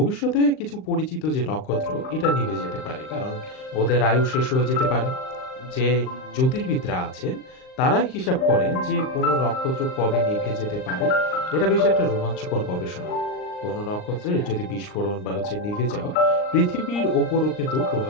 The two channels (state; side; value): late; right; 39 ms